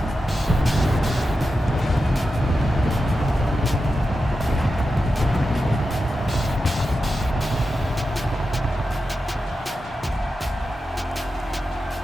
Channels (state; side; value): normal; both; correlation 0.90